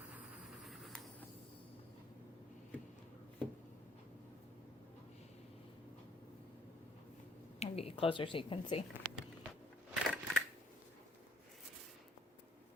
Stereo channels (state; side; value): normal; both; correlation 0.64